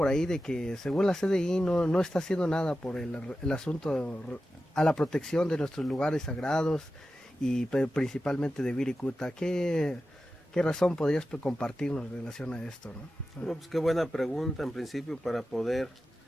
ahí de que según la CDI no está haciendo nada por el asunto a la protección de nuestros lugares sagrados y principalmente de Wirikuta. ¿Qué razón podrías compartirnos en relación a esto, ¿no? Bueno, pues qué buena pregunta en principio para poder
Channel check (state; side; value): normal; both; correlation 0.93